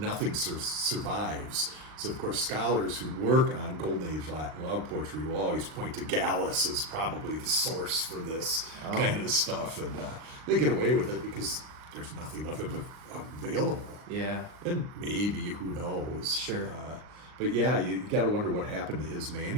survives. So, of course, scholars who work on Golden Age Latin love poetry will always point to Gallus as probably the source for this kind of stuff, and they get away with it because there's nothing of it available. Yeah. And maybe, who knows? Sure. But yeah, you got to wonder what happened to his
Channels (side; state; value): left; late; 39 ms